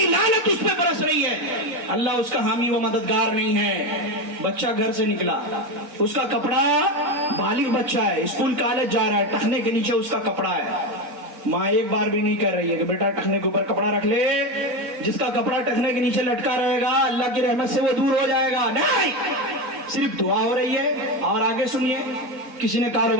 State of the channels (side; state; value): left; late; 4.0 ms